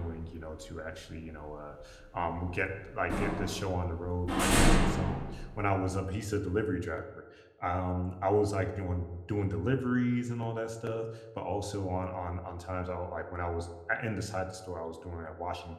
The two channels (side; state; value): both; identical; correlation 1.00